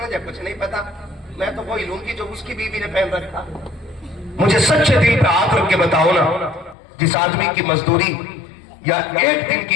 कुछ नहीं पता, मैं तो वही लूंगी जो उसकी बीवी ने पहन रखा। मुझे सच्चे दिल पे हाथ रख के बताओ ना, जिस आदमी की मजदूरी या एक दिन की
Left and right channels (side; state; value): right; drops out; at 6.8 s